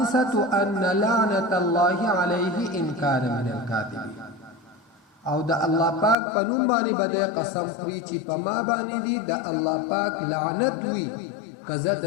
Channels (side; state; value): right; drops out; at 6.2 s